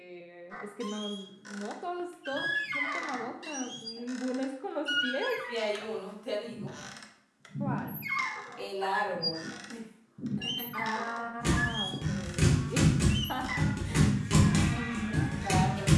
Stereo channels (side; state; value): both; identical; correlation 1.00